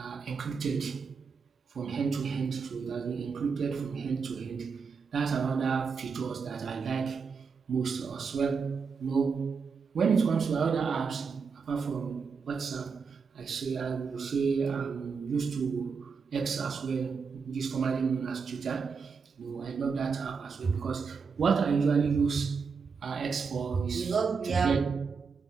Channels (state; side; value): quieter; left; 5.4 dB